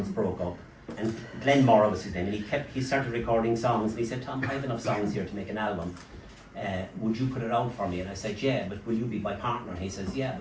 broke up. And Glenn Morrow was his name, and he started recording songs, and he said, Tom, I have enough songs here to make an album. Would you put it out for me? And I said, yeah, but will you be my partner? And he says, yeah, I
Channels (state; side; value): identical; both; correlation 1.00